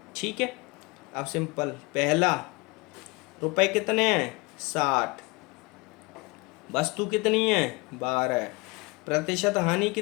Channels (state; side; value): quieter; right; 26.2 dB